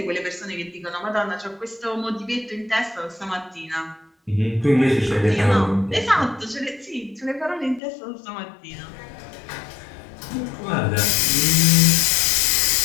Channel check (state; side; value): drops out; right; at 7.8 s